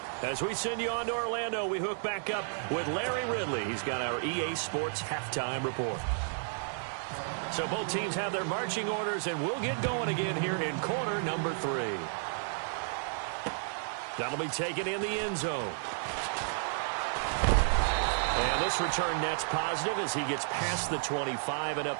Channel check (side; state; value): left; silent; digital silence